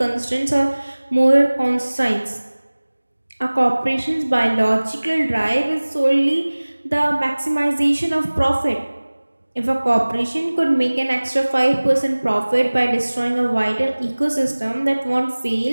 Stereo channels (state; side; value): inverted; both; correlation -1.00